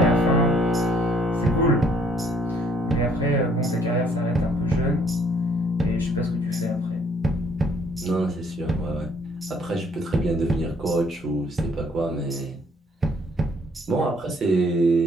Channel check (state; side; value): normal; both; correlation 0.64